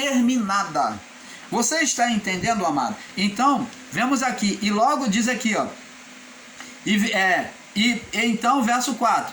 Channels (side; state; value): both; identical; correlation 1.00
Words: Você está entendendo, amado? Então, vemos aqui, e logo diz aqui, ó. Então, verso